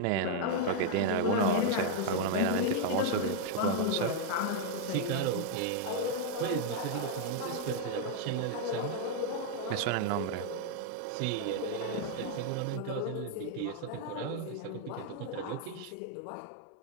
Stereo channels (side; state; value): both; different; correlation 0.00